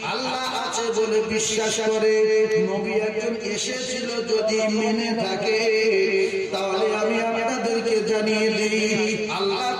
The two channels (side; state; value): both; identical; correlation 1.00